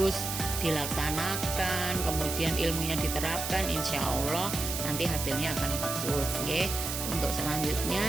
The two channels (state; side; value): noise; right; hiss, 4 dB below the sound